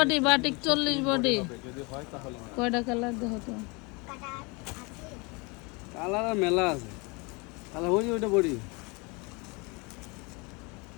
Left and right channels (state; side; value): quieter; right; 28.6 dB